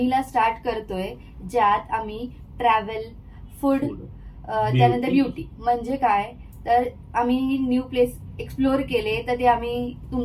स्टार्ट करतोय, ज्यात आम्ही ट्रॅव्हल, फूड, त्यानंतर ब्युटी म्हणजे काय, तर आम्ही न्यू प्लेस एक्सप्लोर केले तर ते आम्ही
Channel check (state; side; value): identical; both; correlation 1.00